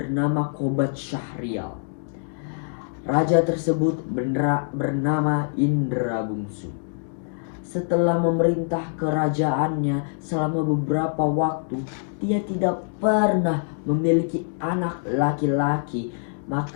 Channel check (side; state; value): right; silent; digital silence